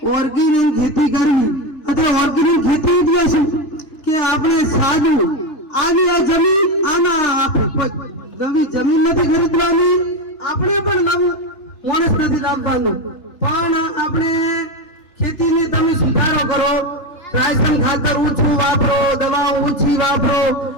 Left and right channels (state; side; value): late; right; 3.3 ms